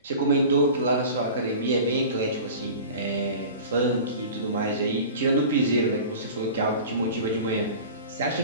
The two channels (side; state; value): both; inverted; correlation -0.38